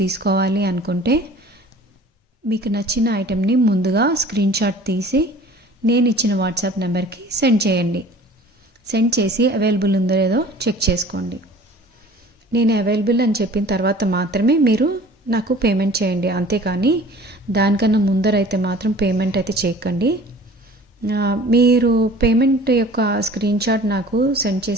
తీసుకోవాలి అనుకుంటే మీకు నచ్చిన ఐటెంని ముందుగా స్క్రీన్ షాట్ తీసి నేను ఇచ్చిన వాట్సాప్ నెంబర్కి సెండ్ చేయండి. సెండ్ చేసి అవైలబుల్ ఉందో లేదో చెక్ చేసుకోండి. నేను అవైలబుల్ అని చెప్పిన తర్వాత మాత్రమే మీరు నాకు పేమెంట్ చేయండి. అంతేకాని దానికన్నా ముందరైతే మాత్రం పేమెంట్ అయితే చేయకండి. మీరు పేమెంట్ యొక్క స్క్రీన్ షాట్ నాకు సెండ్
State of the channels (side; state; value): both; normal; correlation 0.46